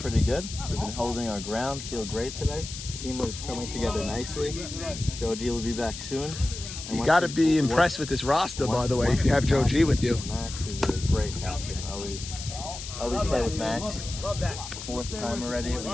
good. We've been holding our ground, feel great today. Team is coming together nicely. Joe G will be back soon. And You got to be impressed with this roster, by the way, if you have Joe G with you. Max is a great captain. Always play with Max. 4th time already. We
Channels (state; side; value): noise; left; hiss, 10 dB below the sound